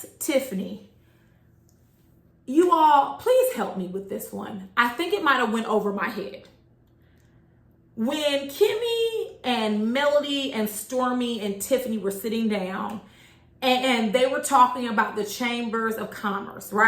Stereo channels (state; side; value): identical; both; correlation 1.00